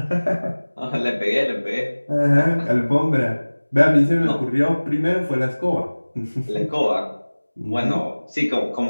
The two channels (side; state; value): both; inverted; correlation -1.00